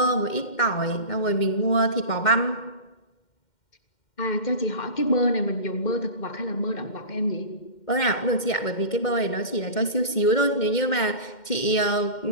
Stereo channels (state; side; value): late; right; 2.1 ms